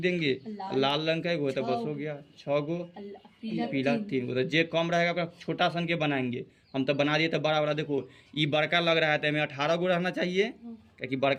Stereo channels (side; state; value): both; identical; correlation 1.00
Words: लाल रंग कै गो है तो बस हो गया 6 गो, पीला 3 गो। तो जे कम रहेगा ओकरा छोटा सन के बनाएंगे, हम तो बना दिए तो बड़ा बड़ा। देखो ये बड़का लग रहा है तो हमें 18 गो रहना चाहिए, क्योंकि